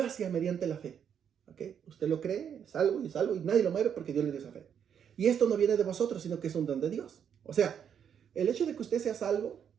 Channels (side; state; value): left; quieter; 8.2 dB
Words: mediante la fe, ¿ok? Usted lo cree, es salvo, y nadie lo mueve porque Dios le dio esa fe. Y esto no viene de vosotros, sino que es un don de Dios. O sea, el hecho de que usted sea salvo